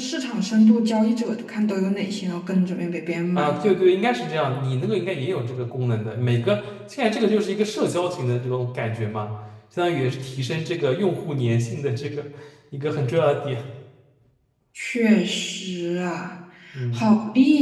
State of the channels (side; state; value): both; identical; correlation 1.00